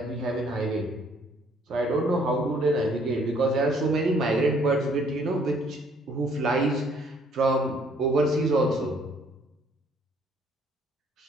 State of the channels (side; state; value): both; normal; correlation 0.63